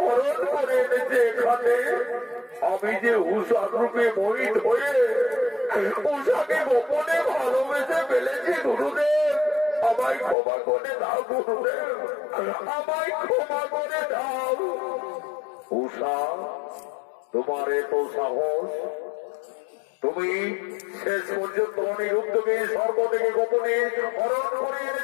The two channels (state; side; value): drops out; right; at 10.4 s